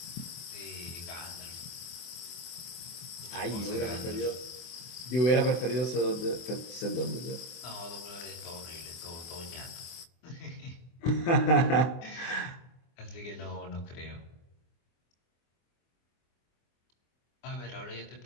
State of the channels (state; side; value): late; right; 24 ms